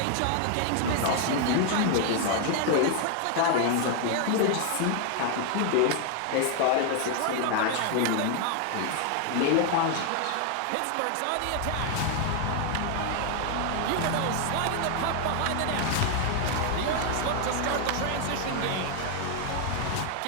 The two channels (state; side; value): different; both; correlation 0.00